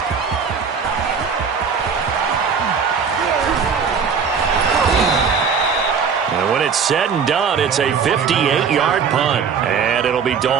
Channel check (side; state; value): left; quieter; 6.2 dB